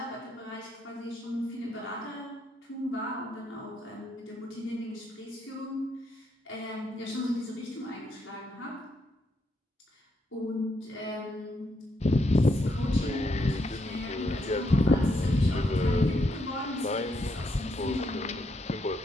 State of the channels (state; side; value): normal; both; correlation 0.77